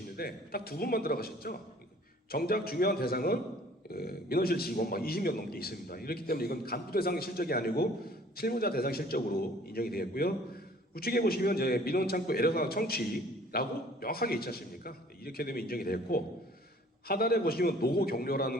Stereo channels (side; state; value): both; normal; correlation 0.54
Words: 딱 2분만 들어가셨죠? 정작 중요한 대상은 민원실 직원 막 20명 넘게 있습니다. 이렇기 때문에 이건 간부 대상 실적이 아니고 실무자 대상 실적으로 인정이 되겠고요. 우측에 보시면 이제 민원 창구 애로사항 청취라고 명확하게 있지 않습니까? 이렇게 되면 인정이 됐고 하단에 보시면 노고